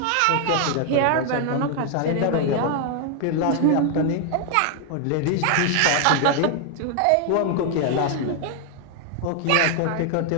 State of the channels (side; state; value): both; different; correlation 0.00